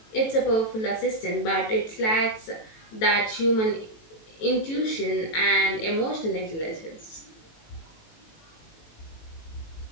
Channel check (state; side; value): late; right; 18 ms